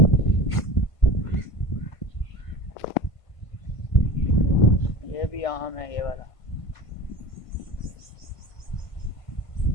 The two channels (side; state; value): right; late; 1.5 ms